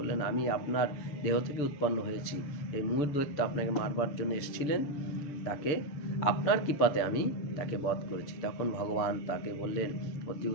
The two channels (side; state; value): right; late; 7.0 ms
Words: আমি আপনার দেহ থেকে উৎপন্ন হয়েছি। এই মূর দৈত্য আপনাকে মারবার জন্য এসেছিলেন, তাকে আপনার কৃপাতে আমি তাকে বধ করেছি। তখন ভগবান তাকে বললেন, অতি